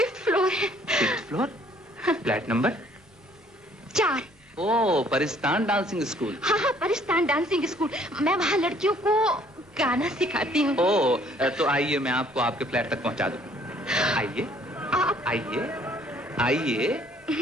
फ्लोर है। 5th floor? Flat number 4। ओ, परिस्तान डांसिंग स्कूल। हाँ हाँ, परिस्तान डांसिंग स्कूल। मैं वहाँ लड़कियों को गाना सिखाती हूँ। ओ, तो आइए मैं आपको आपके फ्लैट तक पहुँचा दूँ। आइए आइए आइए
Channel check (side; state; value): both; normal; correlation 0.60